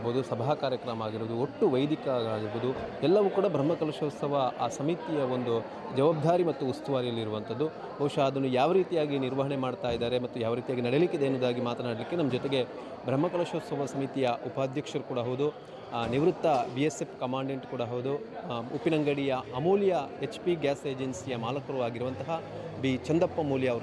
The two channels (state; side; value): identical; both; correlation 1.00